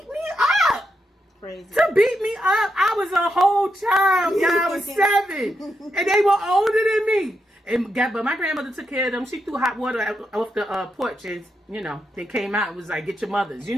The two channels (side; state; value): both; normal; correlation 0.84